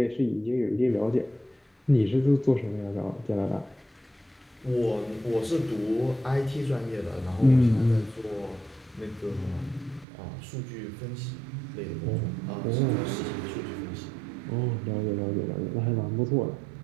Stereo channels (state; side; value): drops out; left; at 10.1 s